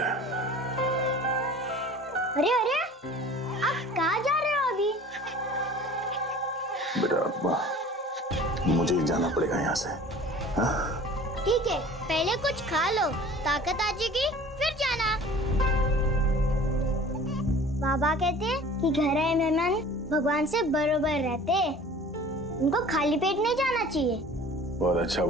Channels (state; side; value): normal; both; correlation 0.45